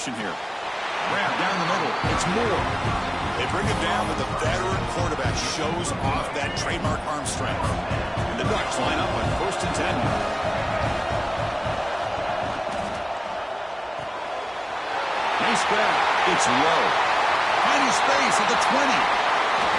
here. Grab down the middle. It's Moore. They bring it down, but the veteran quarterback shows off that trademark arm strength. And the Ducks line up on 1st and 10. Nice grab. It's low. Finding space at the 20.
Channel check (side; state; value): both; identical; correlation 1.00